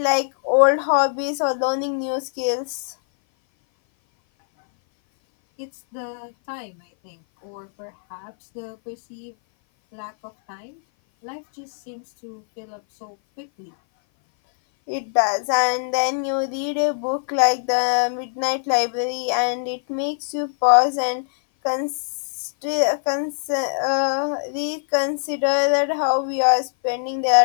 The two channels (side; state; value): right; silent; 57 dB below the other